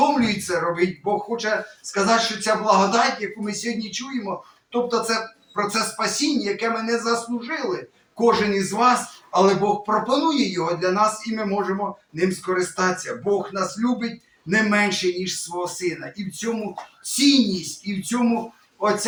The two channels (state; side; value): identical; both; correlation 1.00